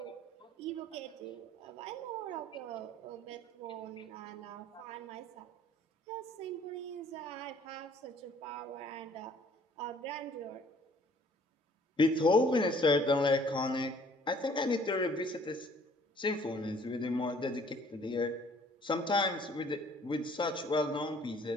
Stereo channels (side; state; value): both; normal; correlation 0.57